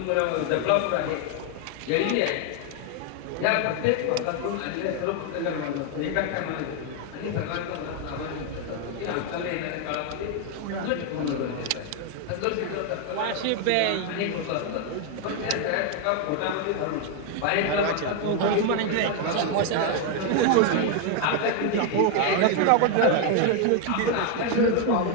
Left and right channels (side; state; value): both; different; correlation 0.01